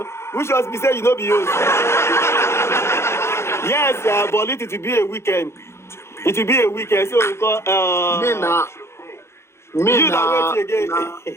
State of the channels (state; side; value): late; right; 0.13 ms